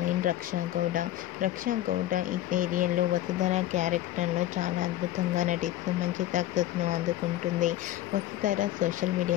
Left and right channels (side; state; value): right; quieter; 14.0 dB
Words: రక్షా గౌడ. రక్షా గౌడ ఈ సీరియల్లో వసుధర క్యారెక్టర్లో చాలా అద్భుతంగా నటిస్తూ మంచి సక్సెస్ను అందుకుంటుంది. వసుధర సోషల్